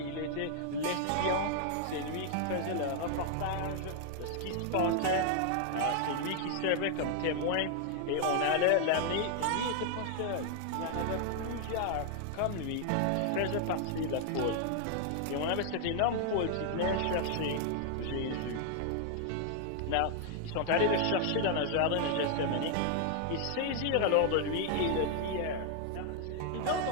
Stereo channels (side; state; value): both; different; correlation 0.00